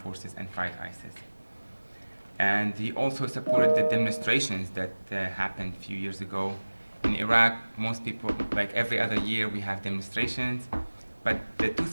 and fight ISIS. And he also supported the demonstrations that happened a few years ago. In Iraq, most people, like every other year, we have demonstrations. But the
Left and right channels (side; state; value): both; inverted; correlation -1.00